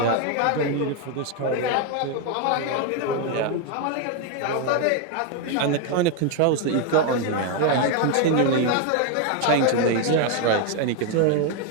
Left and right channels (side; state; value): both; different; correlation 0.01